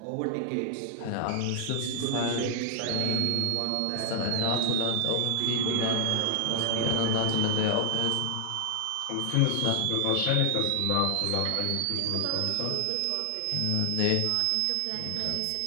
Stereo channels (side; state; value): both; different; correlation 0.00